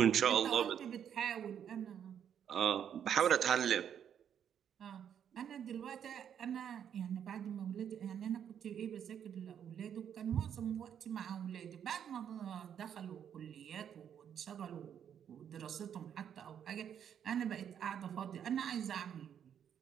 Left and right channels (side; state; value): left; quieter; 8.8 dB